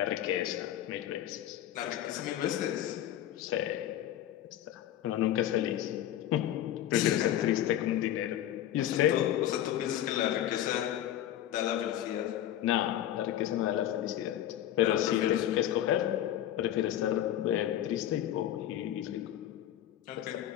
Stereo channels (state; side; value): quieter; right; 11.9 dB